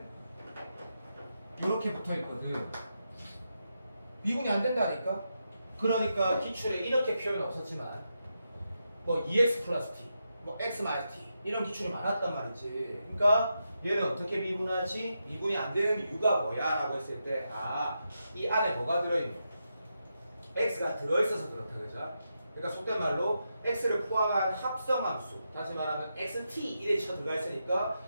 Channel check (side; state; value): both; inverted; correlation -0.86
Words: 이렇게 붙어있거든. 미분이 안 된다니까? 그러니까 기출에 이렇게 표현 없었지만 뭐 2x 플러스 t, 뭐 x 마이너스 t 이런 기출이 많았단 말이지. 그러니까 얘는 어떻게 미분하지? 미분이 안 되는 이유가 뭐야? 라고 했을 때 이 안에 뭐가 들어있는? x가 들어있어서 그렇다 그죠? 그러니까 속된 말로 x를 포함한 합성함수, 다시 말하면 xt 이래 쳐 들어가 있으니까